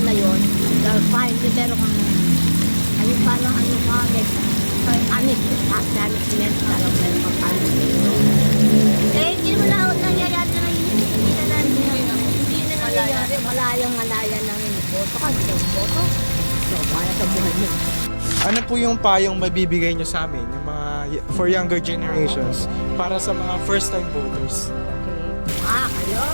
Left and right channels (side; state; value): both; inverted; correlation -1.00